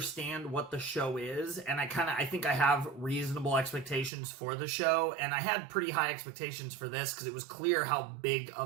what the show is, and I think I have reasonable expectations for the show, and I had pretty high expectations for this because it was clear how big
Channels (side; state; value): left; drops out; at 4.1 s